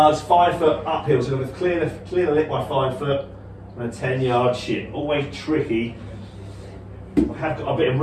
5 foot uphill, so we've clear the lip by 5 foot and a 10-yard chip. Always tricky. I have got a bit of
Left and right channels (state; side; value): identical; both; correlation 1.00